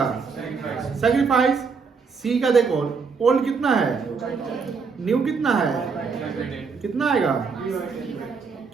सैक्रिफाइस। सी का देखो ओल्ड कितना है, न्यू कितना है, कितना आएगा?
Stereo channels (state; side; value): quieter; left; 5.3 dB